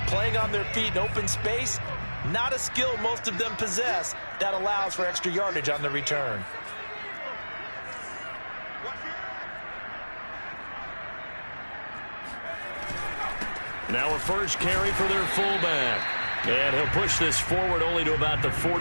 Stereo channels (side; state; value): both; inverted; correlation -1.00